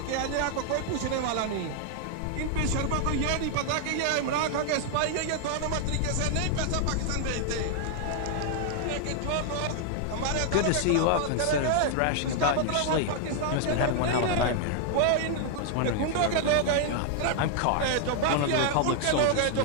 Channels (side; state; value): both; different; correlation 0.00